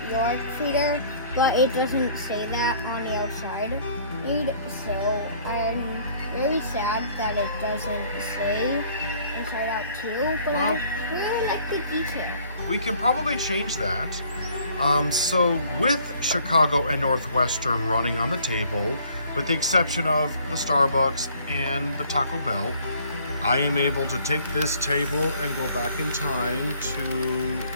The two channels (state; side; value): inverted; both; correlation -0.57